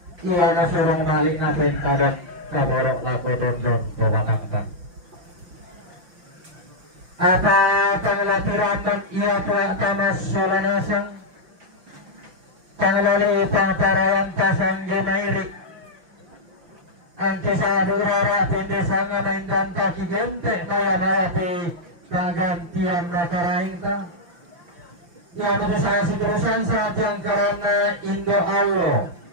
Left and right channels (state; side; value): late; left; 5.8 ms